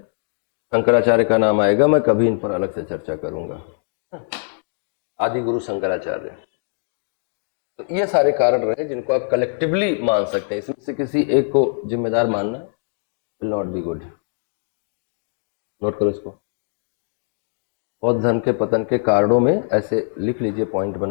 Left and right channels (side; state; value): right; silent; digital silence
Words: शंकराचार्य का नाम आएगा, मैं कभी इन पर अलग से चर्चा करूंगा। आदि गुरु शंकराचार्य। तो ये सारे कारण रहे जिनको आप कलेक्टिवली मान सकते हैं, इसमें से किसी एक को जिम्मेदार मानना will not be good. Note करो इसको। बौद्ध धर्म के पतन के कारणों में ऐसे लिख लीजिए पॉइंट